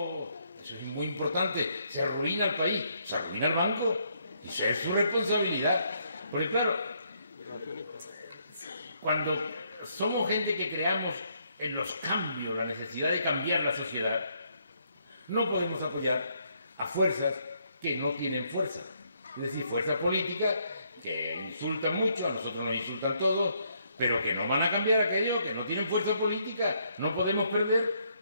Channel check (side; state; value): both; inverted; correlation -0.72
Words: eso es muy importante. Se arruina el país, se arruina el banco. Y eso es su responsabilidad. Porque claro, cuando somos gente que creamos en los cambios, la necesidad de cambiar la sociedad, no podemos apoyar a fuerzas que no tienen fuerza. Es decir, fuerzas políticas que insultan mucho, a nosotros nos insultan todos, pero que no van a cambiar aquello, que no tienen fuerza política. No podemos perder